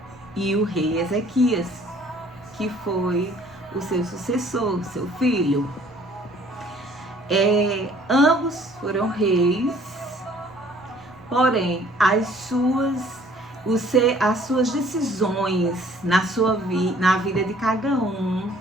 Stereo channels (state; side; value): normal; both; correlation 0.57